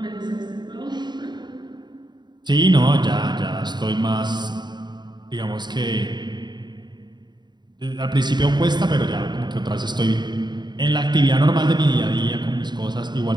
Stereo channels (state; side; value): late; left; 0.21 ms